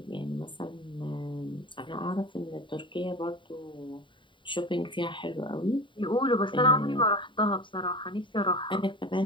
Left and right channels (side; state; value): right; late; 0.24 ms